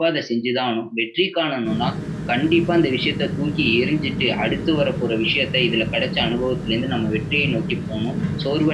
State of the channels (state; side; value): identical; both; correlation 1.00